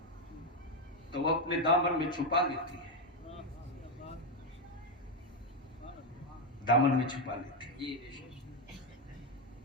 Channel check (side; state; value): both; normal; correlation 0.06